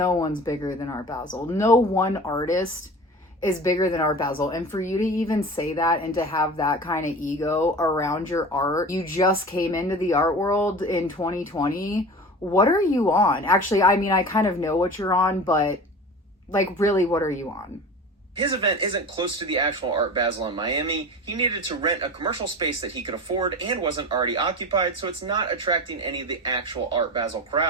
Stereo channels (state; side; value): normal; both; correlation 0.35